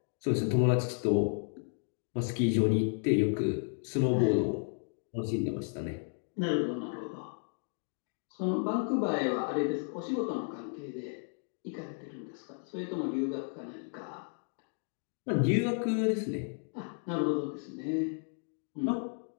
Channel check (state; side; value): silent; right; 56 dB below the other